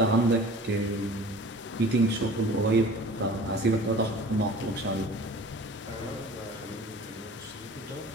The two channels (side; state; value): both; normal; correlation 0.43